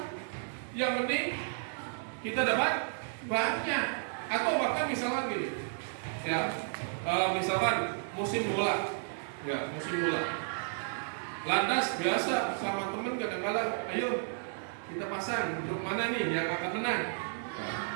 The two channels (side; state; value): left; silent; 56 dB below the other